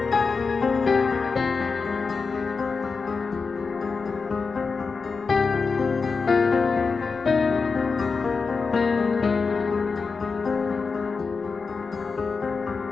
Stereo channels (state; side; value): quieter; right; 4.8 dB